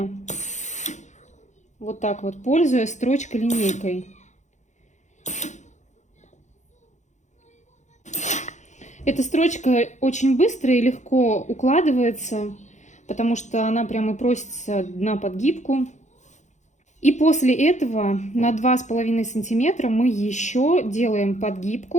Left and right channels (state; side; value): late; right; 0.34 ms